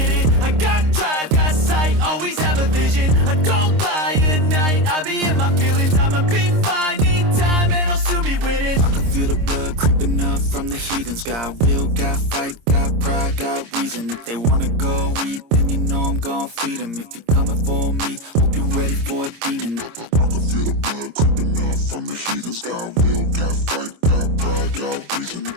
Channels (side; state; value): left; late; 26 ms